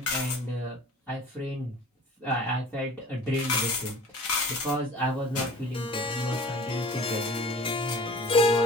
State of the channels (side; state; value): both; normal; correlation 0.44